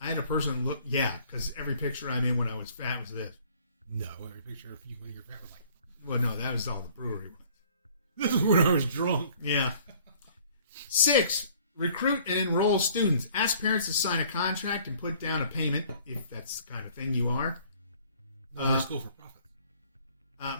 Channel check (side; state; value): both; inverted; correlation -0.56